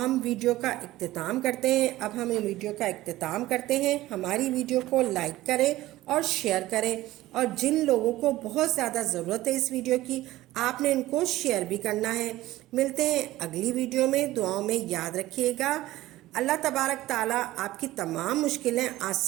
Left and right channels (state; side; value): quieter; left; 16.5 dB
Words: ہم ویڈیو کا اختتام کرتے ہیں۔ اب ہم ویڈیو کا اختتام کرتے ہیں۔ ہماری ویڈیو کو لائک کریں اور شیئر کریں، اور جن لوگوں کو بہت زیادہ ضرورت ہے اس ویڈیو کی آپ نے ان کو شیئر بھی کرنا ہے۔ ملتے ہیں اگلی ویڈیو میں، دعاؤں میں یاد رکھیے گا۔ اللہ تبارک تعالیٰ آپ کی تمام مشکلیں